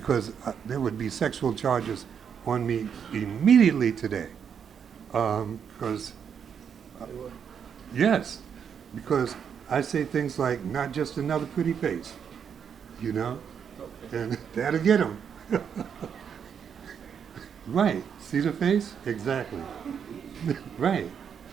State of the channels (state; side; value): quieter; left; 7.5 dB